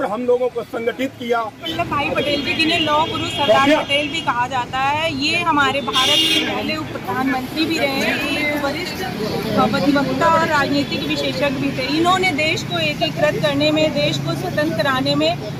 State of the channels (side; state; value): both; identical; correlation 1.00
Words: हम लोगों को संगठित किया। वल्लभ भाई पटेल जी जिन्हें लौह पुरुष सरदार पटेल भी कहा जाता है, ये हमारे भारत के पहले उप प्रधानमंत्री भी रहे, एक वरिष्ठ अधिवक्ता और राजनीतिक विशेषज्ञ भी थे। इन्होंने देश को एकीकृत करने में, देश को स्वतंत्र कराने में